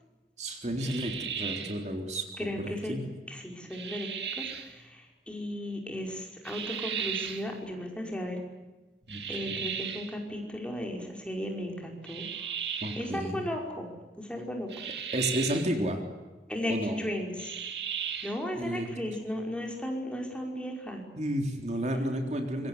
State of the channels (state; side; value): normal; both; correlation 0.62